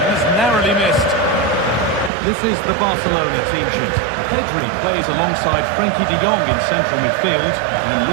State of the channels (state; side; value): drops out; left; at 2.1 s